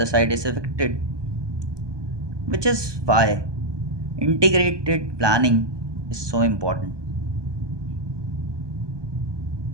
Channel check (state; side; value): late; left; 1.2 ms